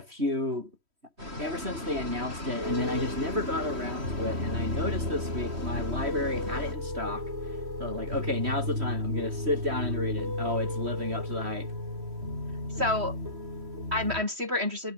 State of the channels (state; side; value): late; left; 3.1 ms